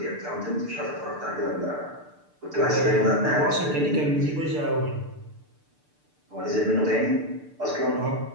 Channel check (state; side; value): late; left; 6.7 ms